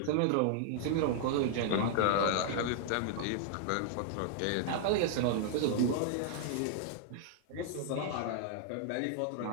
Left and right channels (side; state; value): both; different; correlation -0.01